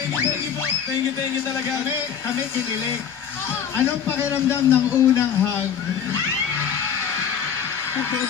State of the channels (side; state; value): right; quieter; 7.8 dB